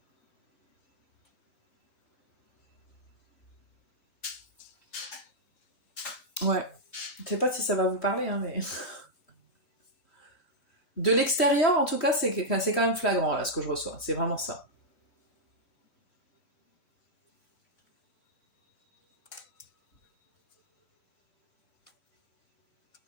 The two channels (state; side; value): late; right; 3.1 ms